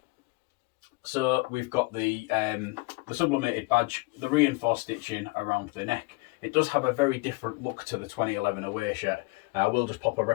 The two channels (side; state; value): right; quieter; 25.2 dB